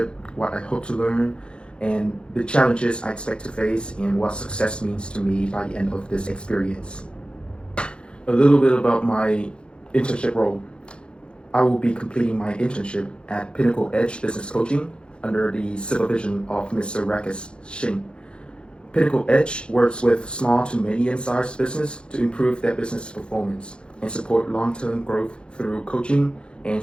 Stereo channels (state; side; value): late; right; 0.054 ms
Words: what I hope to learn, and the challenges I expect to face, and what success means to me by the end of this experience. A little bit about my internship role. I will be completing my internship at Pinnacle Edge Business Coaching under the supervision of Mr. Rakesh Singh. Pinnacle Edge works with small to medium-sized business to improve their business performance and support long-term growth through coaching and